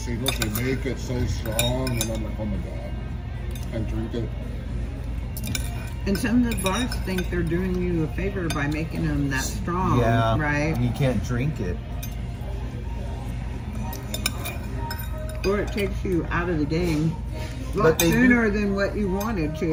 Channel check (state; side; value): identical; both; correlation 1.00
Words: they make it so strong, and I'm like, oh my god, can't drink it. And some of the bars think they're doing you a favor by making them that strong, Yeah. right? You can't drink it. Or it takes you out of the game a But lot they do- sooner than what you wanted